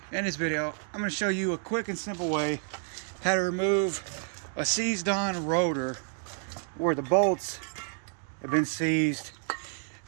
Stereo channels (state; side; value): silent; left; 58 dB below the other